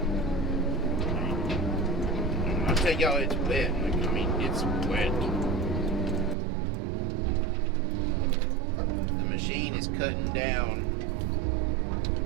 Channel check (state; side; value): drops out; left; at 6.4 s